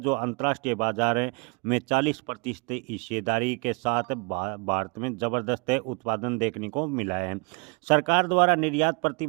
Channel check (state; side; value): quieter; left; 32.3 dB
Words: अंतर्राष्ट्रीय बाजार में 40% हिस्सेदारी के साथ भारत में जबरदस्त उत्पादन देखने को मिला है। सरकार द्वारा निर्यात